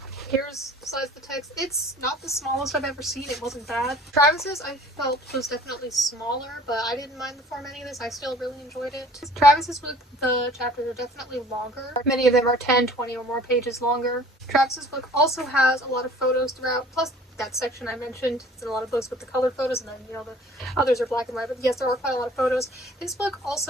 here's the size of the text. It's not the smallest I've ever seen. It wasn't bad. Travis's, I felt, was definitely smaller, but I didn't mind the formatting of this. I still really enjoyed it. Travis's book, the chapters are definitely longer. Many of them are 10, 20 or more pages longer. Travis's book also has a lot of photos throughout, plus that section I mentioned. It's in a lot of books with the colored photos, and then, you know, the others are black and white, but yes, there are quite a lot of photos. This book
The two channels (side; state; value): both; normal; correlation 0.50